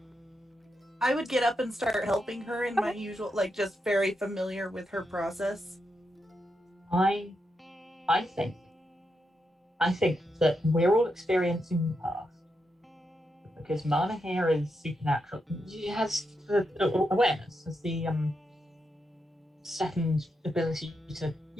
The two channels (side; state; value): both; normal; correlation 0.84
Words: would get up and start helping her in my usual, like, just very familiar with her process. I think that we're all experiencing the past. Because Marna here is supernatural. She has awareness, has the second ability to,